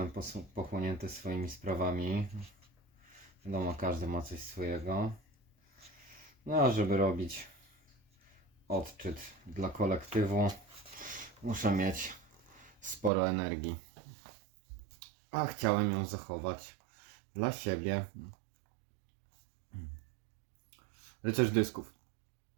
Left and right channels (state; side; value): drops out; left; at 13.1 s